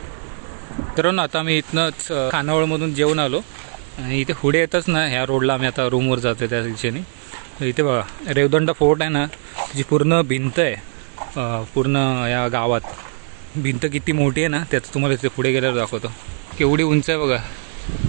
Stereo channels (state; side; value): silent; left; 63 dB below the other